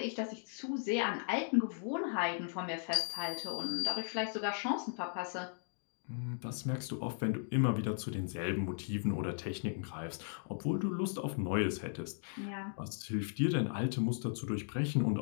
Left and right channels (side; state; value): right; silent; digital silence